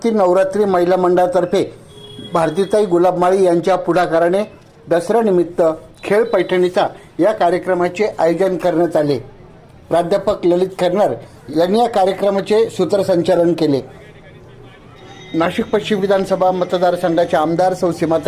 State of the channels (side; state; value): both; identical; correlation 1.00